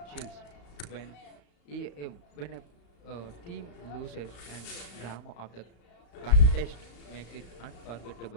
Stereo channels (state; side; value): late; right; 35 ms